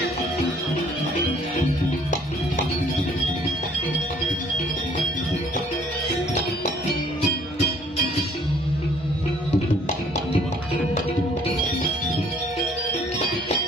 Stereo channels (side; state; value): both; normal; correlation 0.59